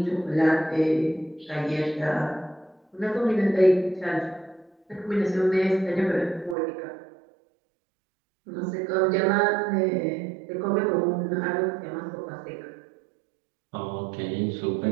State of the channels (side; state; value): left; drops out; at 6.6 s